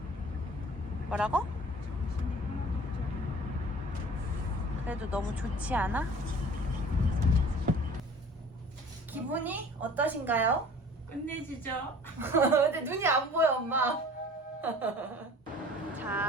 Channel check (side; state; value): both; normal; correlation 0.47